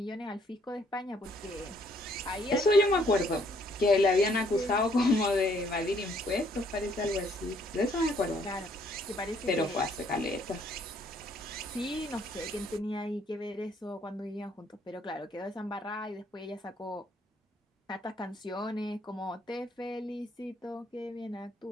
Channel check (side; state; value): both; normal; correlation 0.65